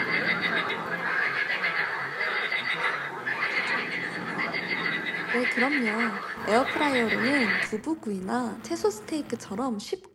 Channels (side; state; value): both; identical; correlation 1.00